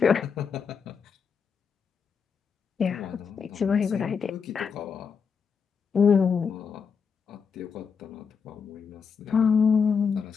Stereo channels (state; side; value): quieter; right; 6.1 dB